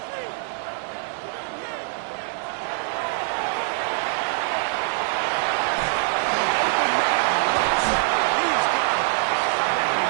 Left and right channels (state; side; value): silent; left; digital silence